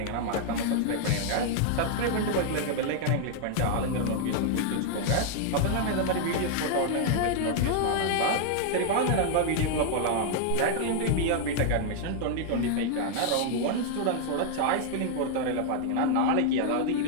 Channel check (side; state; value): both; different; correlation -0.01